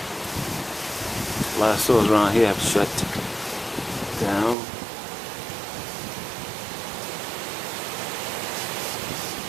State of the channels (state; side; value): drops out; left; at 4.5 s